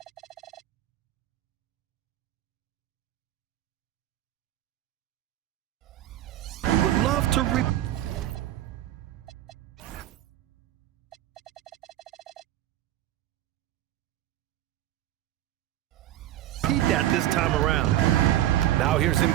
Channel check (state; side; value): quieter; left; 13.5 dB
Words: Love to repeat that this time around. Now here's